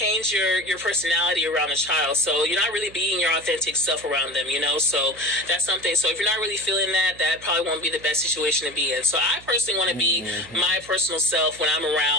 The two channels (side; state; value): right; noise; hum, 22 dB below the sound